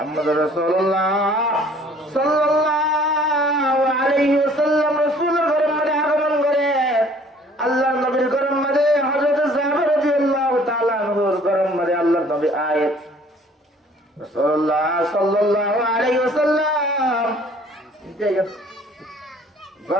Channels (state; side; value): normal; both; correlation 0.55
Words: রাসূলুল্লাহ সাল্লাল্লাহু আলাইহি ওয়াসাল্লাম রাসূলের ঘরের মাঝে আগমন করে আল্লাহর নবীর ঘরের মাঝে হযরত জাবের রাদিয়াল্লাহু তাআলা আনহুর ঘরের মাঝে আল্লাহর নবী আয়াত রাসূলুল্লাহ সাল্লাল্লাহু আলাইহি ওয়াসাল্লাম